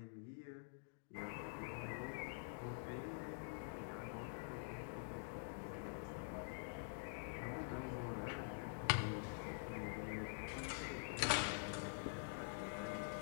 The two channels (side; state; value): right; silent; digital silence